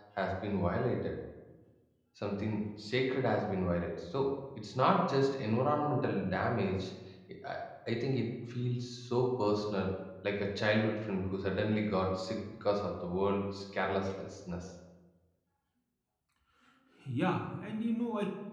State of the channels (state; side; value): identical; both; correlation 1.00